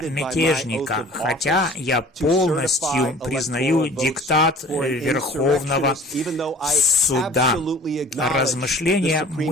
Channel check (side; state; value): both; normal; correlation 0.46